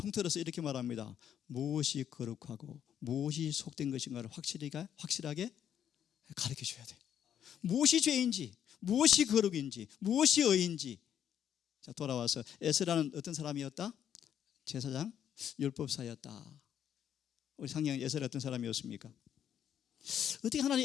이렇게 말합니다. 무엇이 거룩하고 무엇이 속된 것인가를 확실하게 가르쳐 줘야 돼. 무엇이 죄인지, 무엇이 거룩인지, 무엇이 의인지. 자, 돌아와서 에스라는 어떤 사람이었다? 제사장, 율법사였다. 우리 상영 에스라 어떤 사람이었습니까? 어떻게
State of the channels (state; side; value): quieter; right; 9.5 dB